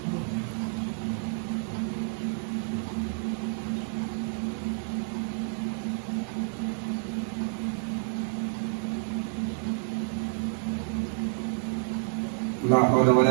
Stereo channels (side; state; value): left; silent; 58 dB below the other